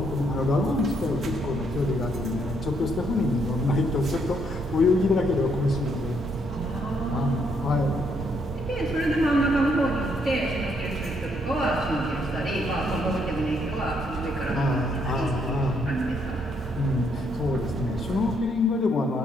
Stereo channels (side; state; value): both; normal; correlation 0.72